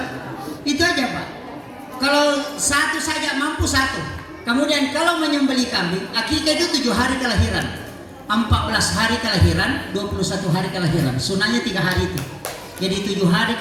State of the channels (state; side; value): identical; both; correlation 1.00